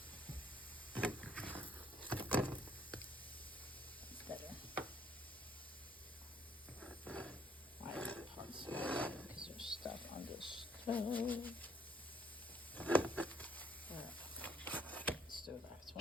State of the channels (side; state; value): both; normal; correlation 0.66